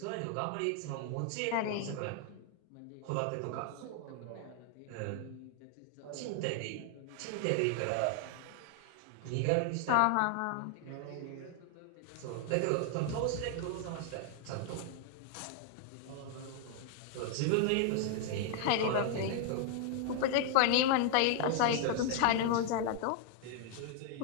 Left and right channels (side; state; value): both; different; correlation 0.00